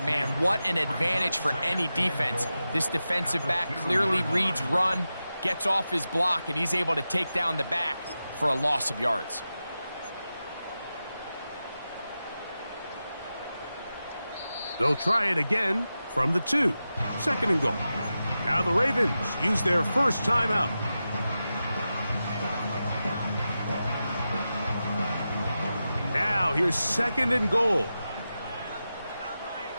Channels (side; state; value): both; inverted; correlation -0.92